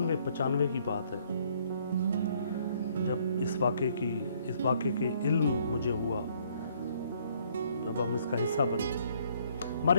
की बात है, जब इस वाक़े के इल्म मुझे हुआ, जब हम इसका हिस्सा बने।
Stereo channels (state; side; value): inverted; both; correlation -0.65